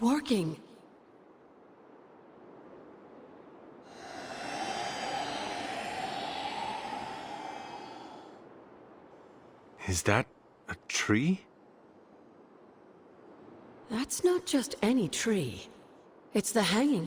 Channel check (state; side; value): identical; both; correlation 1.00